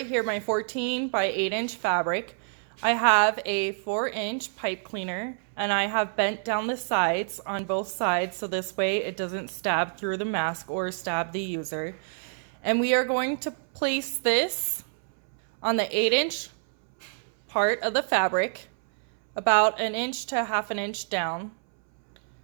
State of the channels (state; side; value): silent; left; 60 dB below the other